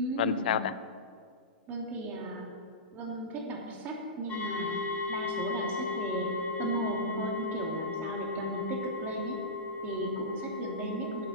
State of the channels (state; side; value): normal; both; correlation -0.18